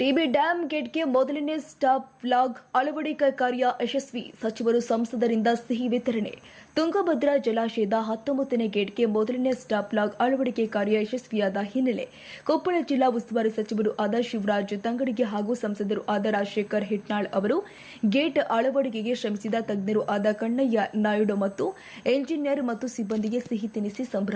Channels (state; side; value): identical; both; correlation 1.00